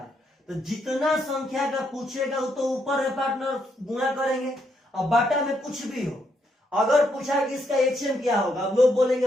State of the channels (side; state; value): both; normal; correlation 0.76